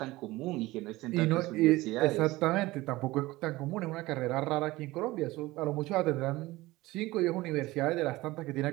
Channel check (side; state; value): left; quieter; 19.2 dB